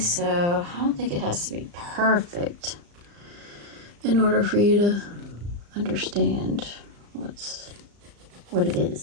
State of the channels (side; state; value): left; late; 35 ms